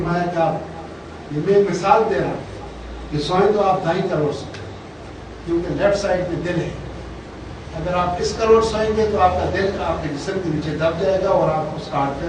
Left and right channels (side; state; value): both; identical; correlation 1.00